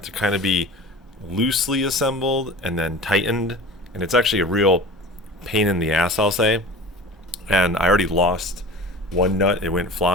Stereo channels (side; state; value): both; normal; correlation 0.37